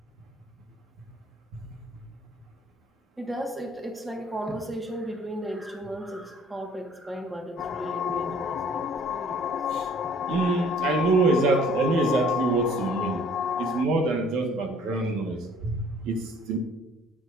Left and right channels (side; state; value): both; normal; correlation 0.55